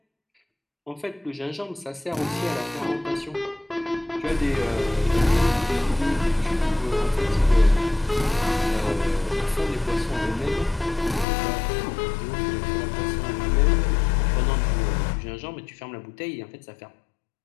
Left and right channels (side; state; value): right; drops out; at 11.2 s